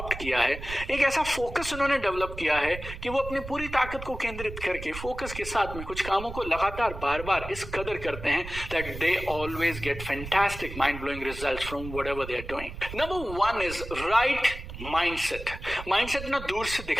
किया है। एक ऐसा फोकस उन्होंने डेवलप किया है कि वो अपनी पूरी ताकत को केंद्रित करके फोकस के साथ में कुछ कामों को लगातार बार बार इस कदर करते हैं that they always get fantastic mind blowing results from whatever they are doing. Number 1 is right mindset. Mindset ना दूर से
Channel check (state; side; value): noise; right; rumble, 10 dB below the sound